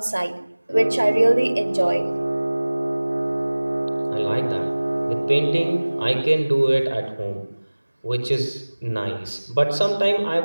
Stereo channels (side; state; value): both; inverted; correlation -1.00